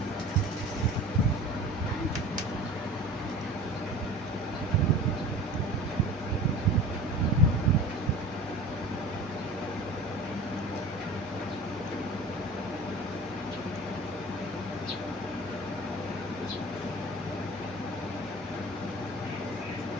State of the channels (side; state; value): both; normal; correlation 0.40